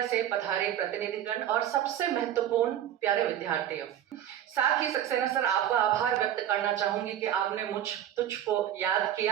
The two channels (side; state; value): left; quieter; 10.9 dB